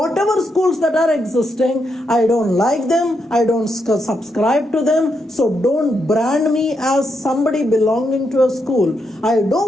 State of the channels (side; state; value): both; normal; correlation 0.81